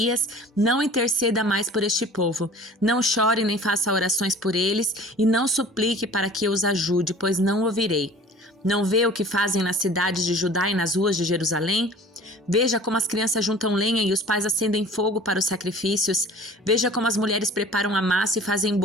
não interceda mais por este povo, não chore nem faça orações por eles e não suplique para que eu os ajude, pois não ouvirei. Não vê o que fazem nas cidades de Judá e nas ruas de Jerusalém? Veja como as crianças juntam lenha e os pais acendem fogo para os sacrifícios. Veja como as mulheres preparam a massa e fazem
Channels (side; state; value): both; normal; correlation 0.45